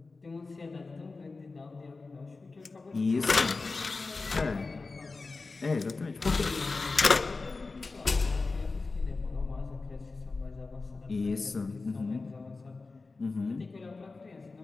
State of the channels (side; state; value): right; quieter; 3.8 dB